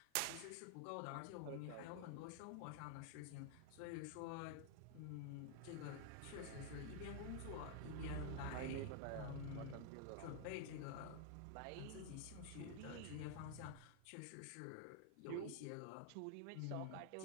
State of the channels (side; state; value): both; different; correlation 0.00